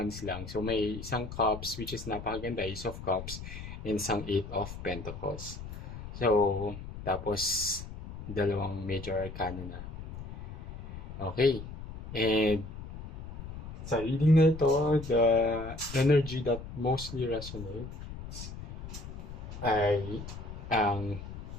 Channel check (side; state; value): left; noise; rumble, 10 dB below the sound